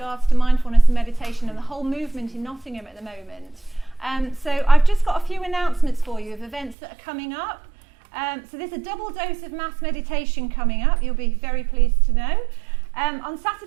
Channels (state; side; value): drops out; left; at 6.8 s